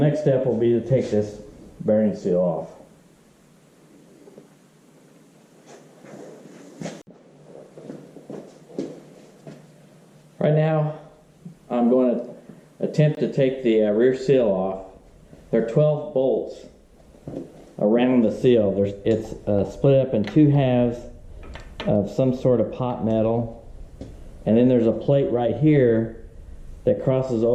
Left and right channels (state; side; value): identical; both; correlation 1.00